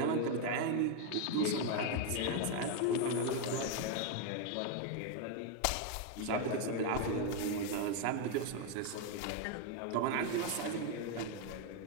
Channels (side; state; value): both; different; correlation 0.01